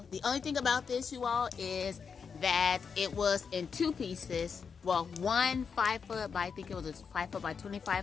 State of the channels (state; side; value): quieter; right; 6.0 dB